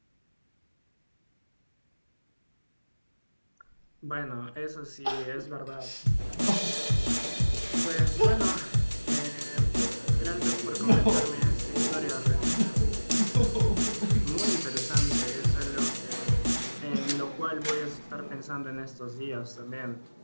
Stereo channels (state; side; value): inverted; both; correlation -1.00